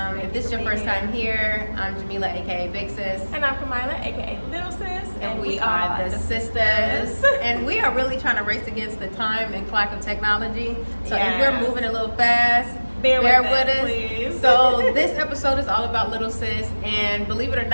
if this is your first time here, I'm Jamila aka Big Sis. And I'm Kamila aka Lil Sis. And we are the sisters. And we are really trying to race against the time and clock of technology. So if we're moving a little fast, bear with us. Please. So this episode is all about Lil Sis, and believe it or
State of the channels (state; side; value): inverted; both; correlation -1.00